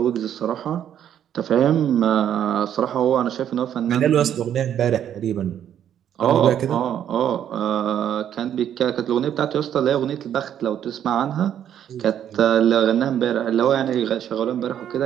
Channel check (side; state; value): left; quieter; 9.9 dB